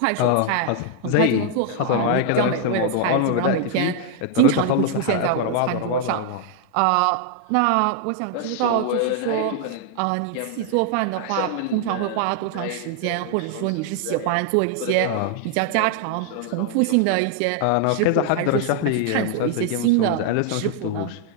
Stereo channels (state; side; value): different; both; correlation 0.00